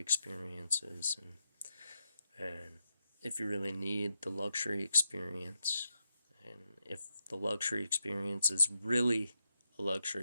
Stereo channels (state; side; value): inverted; both; correlation -0.85